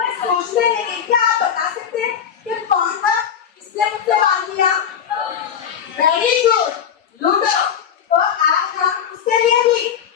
सोचने लगी, क्या आप बता सकते हैं कि कौन था इसने मुझसे बात किया? Very good, ludo. तो आज हम उसके लिए भी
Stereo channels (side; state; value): right; quieter; 8.1 dB